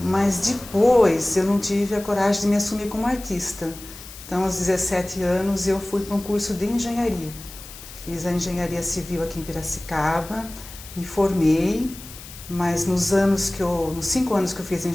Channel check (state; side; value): noise; left; hiss, 16 dB below the sound